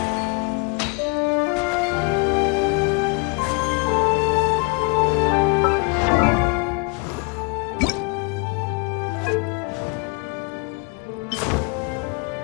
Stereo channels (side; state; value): right; quieter; 32.0 dB